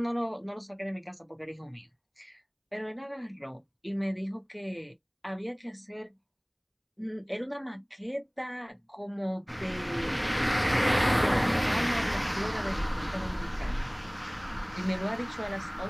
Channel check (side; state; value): both; identical; correlation 1.00